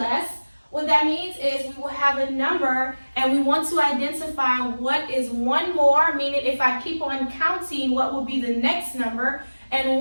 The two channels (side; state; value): both; inverted; correlation -1.00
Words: What that means is we will have a number and we want to identify what is one more, meaning if I keep on counting, what will be the next number, and